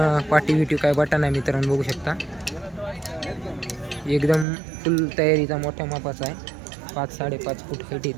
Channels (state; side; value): drops out; left; at 4.5 s